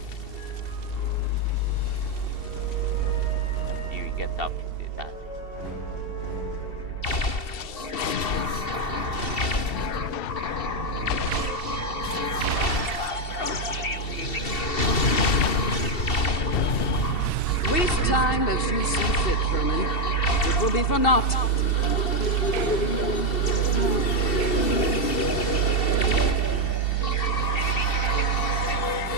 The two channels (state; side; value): late; right; 2.7 ms